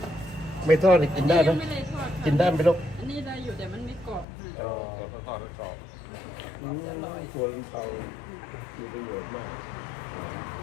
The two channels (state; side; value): drops out; right; at 4.2 s